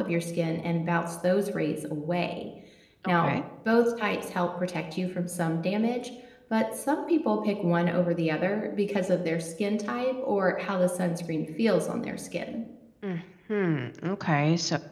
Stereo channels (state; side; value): identical; both; correlation 1.00